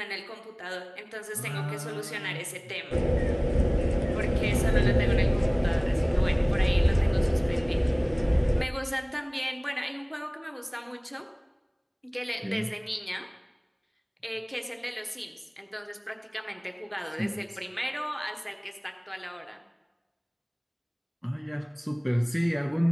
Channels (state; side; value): identical; both; correlation 1.00